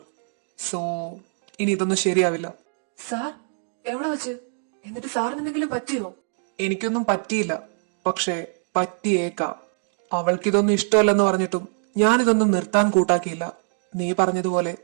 സോ ഇനി ഇതൊന്നും ശരിയാവില്ല. സാർ എവിടെ വെച്ച്? എന്നിട്ട് സാറിന് എന്തെങ്കിലും പറ്റിയോ? എനിക്കൊന്നും പറ്റിയില്ല, പക്ഷെ പറ്റിയേക്കാം. അവൾക്കിതൊന്നും ഇഷ്ടമല്ലെന്ന് പറഞ്ഞിട്ടും ഞാനിതൊന്നും നിർത്താൻ കൂട്ടാക്കിയില്ല. നീ പറഞ്ഞതുപോലെ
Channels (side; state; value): left; silent; 57 dB below the other